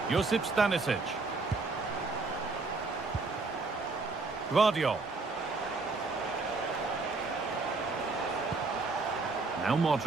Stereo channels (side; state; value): left; quieter; 3.8 dB